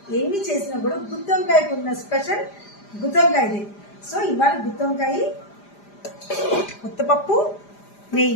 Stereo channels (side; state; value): right; late; 5.0 ms